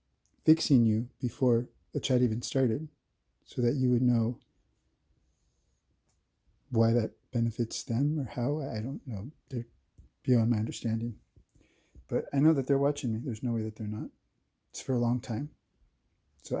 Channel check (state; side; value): identical; both; correlation 1.00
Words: fixing you before the chat even started so that you would know why that benefits them or how. I don't know. They're beyond my understanding. But I know that they're watching me. There's no way that they're not. It's for a long time. So